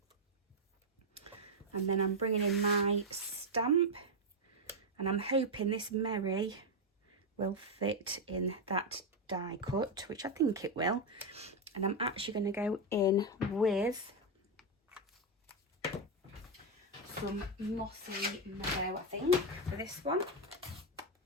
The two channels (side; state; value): both; normal; correlation 0.04